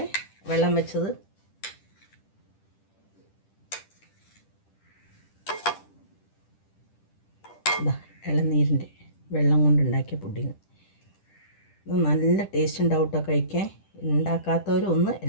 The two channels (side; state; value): right; late; 10 ms